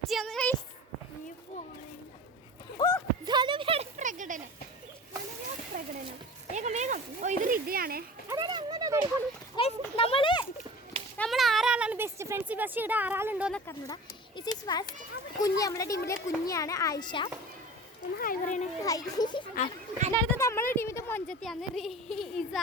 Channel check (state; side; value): normal; both; correlation 0.38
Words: പ്രകടനം വേഗം വേഗം. ഓ ഇത് റിദ്യയാണേ. നമ്മൾ ആറാളാണ് ബെസ്റ്റ് ഫ്രണ്ട്സ്. ബസ് ഇവിടെ ആറാളുണ്ടോന്നൊക്കെ അറിഞ്ഞൂടാ. ഇറ്റ് ഈസ് ഫസ്റ്റ് കുഞ്ഞ്, നമ്മുടെ ടീമിലെ കുഞ്ഞാണ് ആയിഷ. ഒന്ന് ഹായ് പറയണേ. അടുത്തത് നമ്മുടെ ടീമിന്റെ മൊഞ്ചത്തിയാണ് ഇസ.